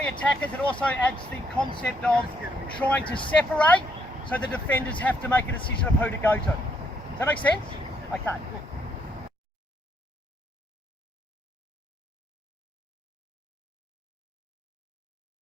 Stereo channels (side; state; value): both; normal; correlation 0.73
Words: attackers, it also adds the concept of trying to separate, so the defenders have to make a decision of who to go to. Does that make sense? Okay.